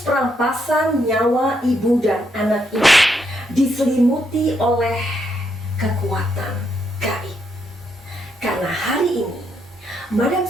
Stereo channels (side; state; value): both; normal; correlation 0.77